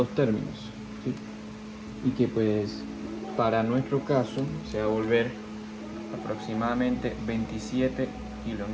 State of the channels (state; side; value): identical; both; correlation 1.00